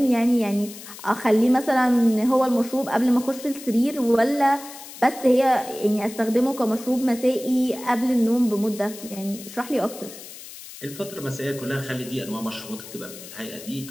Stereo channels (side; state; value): left; noise; hiss, 15 dB below the sound